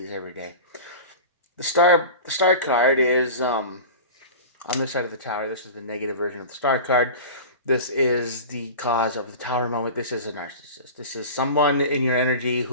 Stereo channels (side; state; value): both; inverted; correlation -0.33